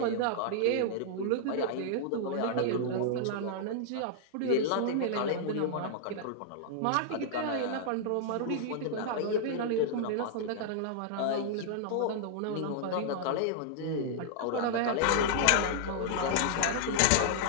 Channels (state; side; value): different; both; correlation -0.01